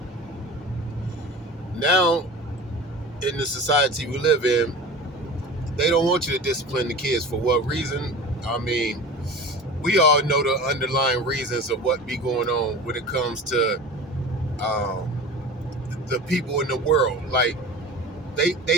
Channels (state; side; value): normal; both; correlation 0.35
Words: Now, in the society we live in, they don't want you to discipline the kids. For what reason? I mean, we all know the underlying reasons of what be going on when it comes to the people in the world. Like